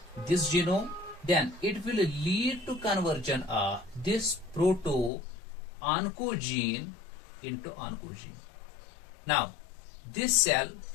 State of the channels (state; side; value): drops out; right; at 5.1 s